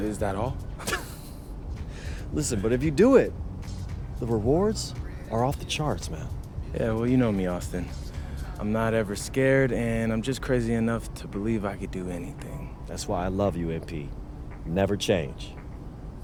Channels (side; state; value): both; identical; correlation 1.00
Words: that all? Listen, but if you do it, the rewards are off the charts, man. Yeah, well, you know me, Austin. I'm not ever scared, and I'm just crazy enough to believe I could do anything. That's why I love you, MP. You never change.